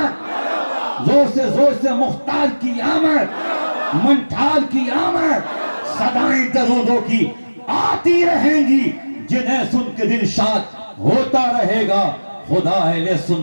जोर से मुख्तार की आमद, मंठार की आमद। सदाएं दरूदों की आती रहेंगी, जिन्हें सुन के दिल शाद होता रहेगा। खुदा अहले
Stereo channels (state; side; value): inverted; both; correlation -1.00